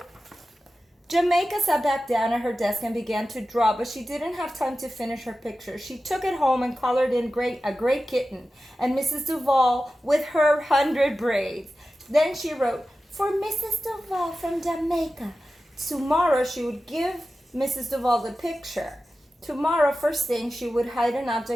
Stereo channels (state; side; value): normal; both; correlation 0.94